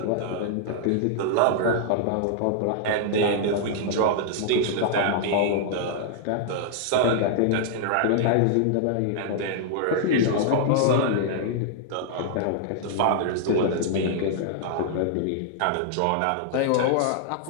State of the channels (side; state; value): both; different; correlation -0.01